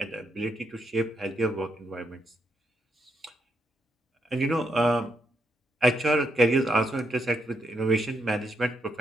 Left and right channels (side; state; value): both; normal; correlation 0.80